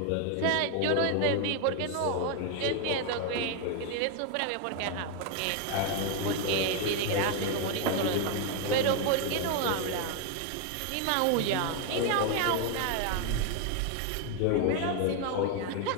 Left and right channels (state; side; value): different; both; correlation 0.01